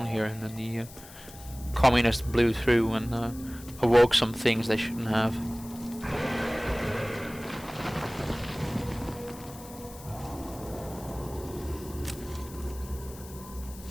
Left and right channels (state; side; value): noise; left; hiss, 18 dB below the sound